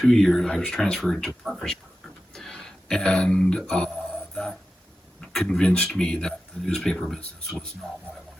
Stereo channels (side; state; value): both; normal; correlation 0.93